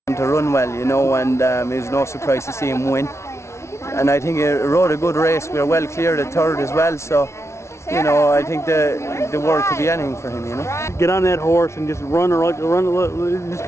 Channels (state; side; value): late; right; 0.13 ms